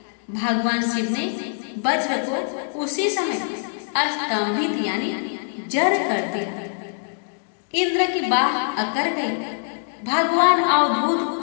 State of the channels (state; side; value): silent; right; digital silence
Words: भगवान शिव ने वज्र को उसी समय अस्तंभित यानी जड़ कर दिया। इंद्र की बाह अकड़ गई। भगवान अवधूत